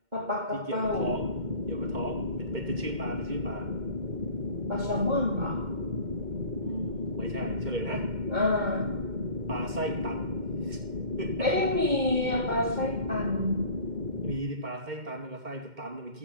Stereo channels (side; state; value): left; late; 2.1 ms